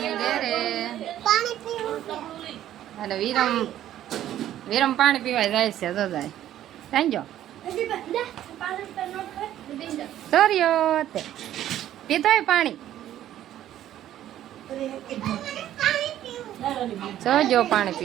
ઘરે અને વિરમ પાણી પીવા જાય છે તો જાય સાંજો સોર્યો તે પીતો હોય પાણી જો પાણી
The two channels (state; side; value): quieter; left; 12.2 dB